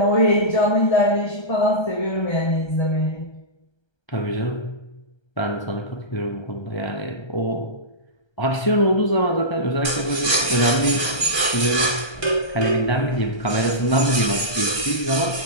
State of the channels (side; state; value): right; late; 1.3 ms